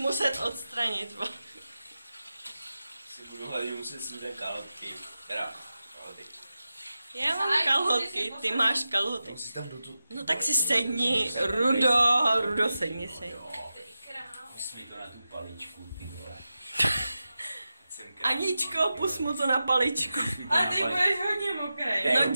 odstranit. Si budu hledat, muset sudat kalhotky. Teda, kalhoty. Já mám kalhotky, ty máš kalhoty. No tak si sedni, Rudo, sedni si. Pust mi to na tu paličku, ty vole. Aničko, pust mu to na paličku. Ale ty budeš hodně mokrý. No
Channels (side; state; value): both; inverted; correlation -0.92